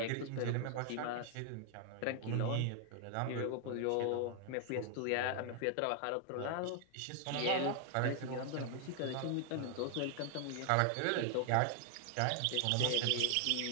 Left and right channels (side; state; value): both; different; correlation 0.00